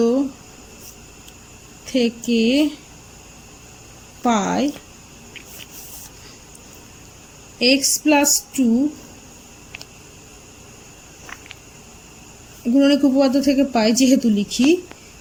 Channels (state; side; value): identical; both; correlation 1.00